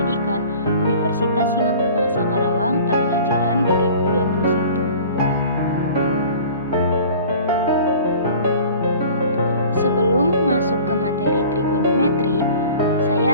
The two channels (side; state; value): both; inverted; correlation -0.45